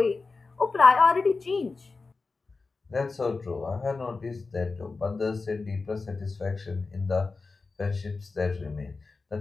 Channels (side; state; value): right; quieter; 4.0 dB